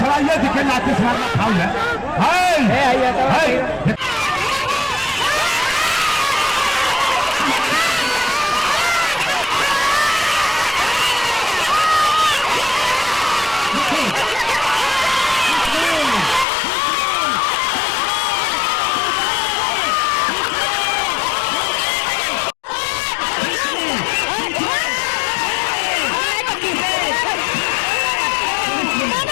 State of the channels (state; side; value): drops out; right; at 16.4 s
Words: देखिए लाते से मारना फाउल है।